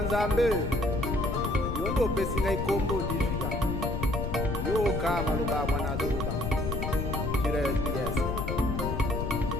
Nzambe yo nde opesi ngai kombo dijika yoka maloba ya mwana azoloba kira SBS.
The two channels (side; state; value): left; noise; rumble, 2 dB below the sound